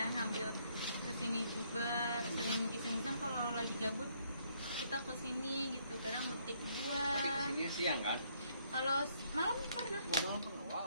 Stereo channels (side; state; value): both; inverted; correlation -0.69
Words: ngambil kesini juga, sering iseng-iseng kalau lagi gabut kita kesini gitu, kadang metik tapi buah. kesini siang kan. Kalau malam pernah.